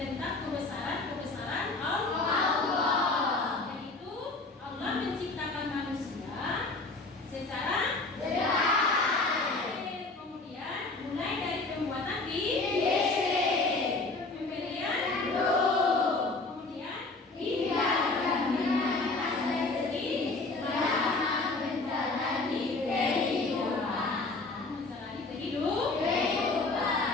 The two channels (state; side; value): quieter; right; 3.4 dB